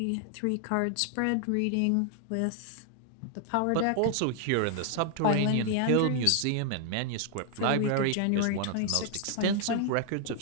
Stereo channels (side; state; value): both; different; correlation 0.00